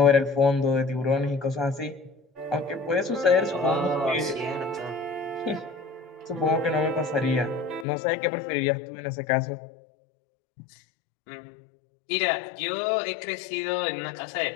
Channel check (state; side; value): drops out; right; at 7.9 s